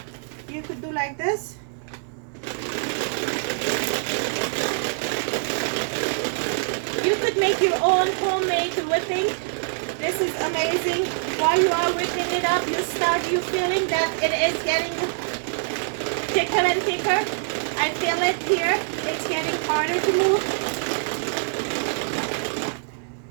You could do like this. You could make your own homemade whipping. This is amazing. While you are whipping it up, you feeling that it is getting thicker and thicker. I feel it here. It's getting harder to move.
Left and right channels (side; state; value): left; silent; 62 dB below the other